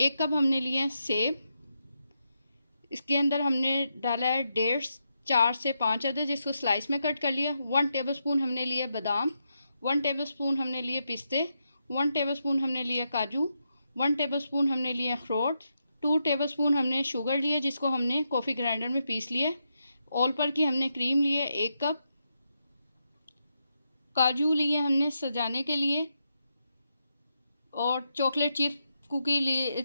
कप हमने लिए सेब। इसके अंदर हमने डाला है डेट्स 4 से 5 अदद, जिसको स्लाइस में कट कर लिया। 1 टेबलस्पून हमने लिए बादाम, 1 टेबलस्पून हमने लिए पिस्ते, 1 टेबलस्पून हमने लिए काजू, 1 टेबलस्पून हमने लिए अखरोट, 2 टेबलस्पून हमने शुगर लिए, जिसको हमने कॉफ़ी ग्राइंडर में पीस लिया। ऑल पर की हमने क्रीम लिए 1 कप, काजू लिए हमने सजाने के लिए, और चॉकलेट चिप्स कुकी लिए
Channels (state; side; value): inverted; both; correlation -0.84